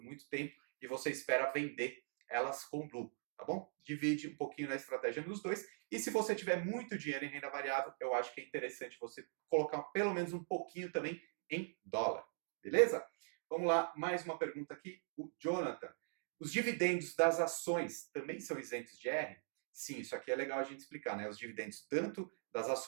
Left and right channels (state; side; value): silent; left; digital silence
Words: muito tempo e você espera vender elas com lucro, tá bom? Divide um pouquinho na estratégia nos dois. E se você tiver muito dinheiro em renda variável, eu acho que é interessante você colocar pelo menos um pouquinho também em dólar, beleza? Vamos lá, mais uma pergunta aqui. O Jonathan. Os dividendos das ações também são isentos de R? Sim, isso aqui é legal a gente explicar, né? Os dividendos tanto das